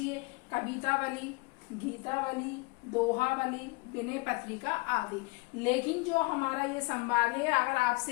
कवितावली, गीतावली, दोहावली, विनय पत्रिका आदि। लेकिन जो हमारा ये संवाद है, अगर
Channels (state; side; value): quieter; right; 25.1 dB